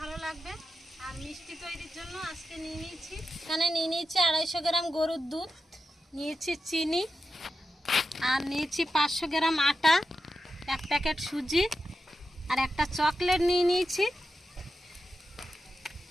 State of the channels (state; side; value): normal; both; correlation 0.89